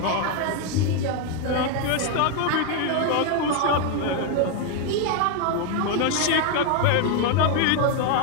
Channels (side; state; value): both; different; correlation 0.01